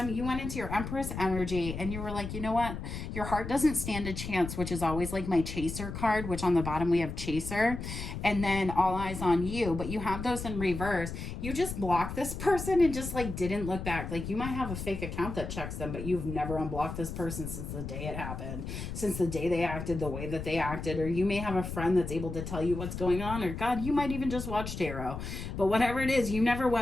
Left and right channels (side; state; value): left; noise; rumble, 7 dB below the sound